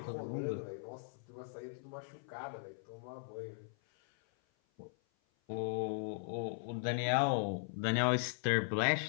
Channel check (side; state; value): right; silent; 52 dB below the other